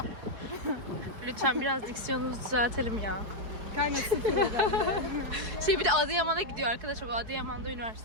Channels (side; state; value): left; late; 4.8 ms